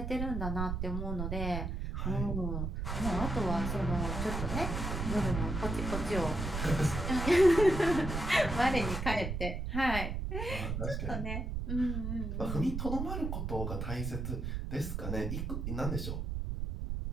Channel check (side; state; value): right; noise; rumble, 3 dB below the sound